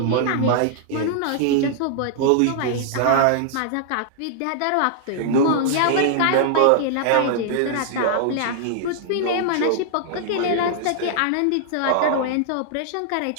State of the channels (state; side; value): different; both; correlation -0.01